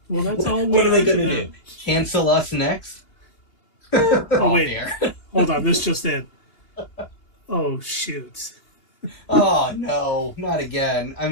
Well, that's all we are to them. Do? Cancel us next? Oh, wait. Hold on. This just in. Oh, shoot. Oh, no. Not again. I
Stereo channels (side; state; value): right; late; 2.8 ms